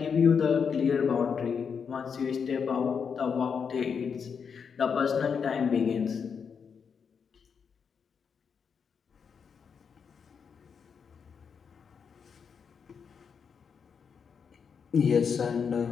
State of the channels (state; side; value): quieter; right; 6.4 dB